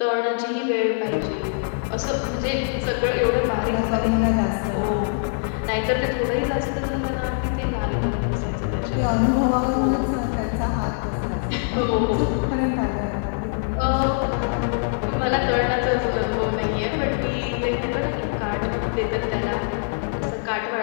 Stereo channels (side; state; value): right; silent; digital silence